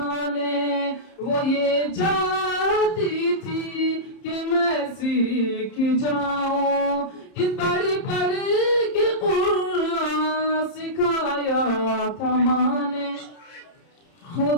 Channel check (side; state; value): right; late; 30 ms